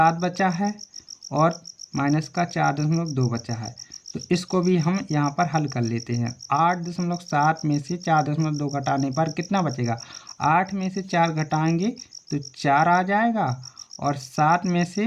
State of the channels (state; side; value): identical; both; correlation 1.00